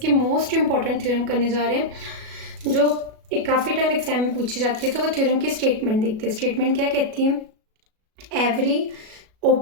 मोस्ट इंपॉर्टेंट थ्योरम करने जा रहे हैं जो काफ़ी टाइम एग्जाम में पूछी जाती है। तो वो थ्योरम की स्टेटमेंट देखते हैं। स्टेटमेंट क्या कहती है? Every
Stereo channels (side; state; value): left; late; 37 ms